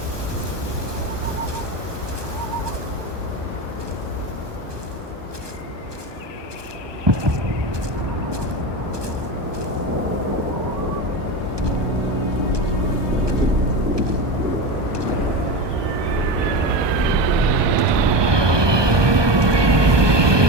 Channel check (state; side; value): late; left; 1.2 ms